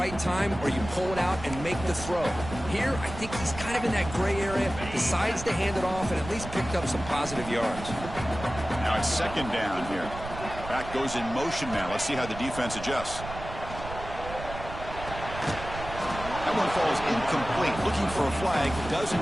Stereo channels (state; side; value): noise; right; rumble, 10 dB below the sound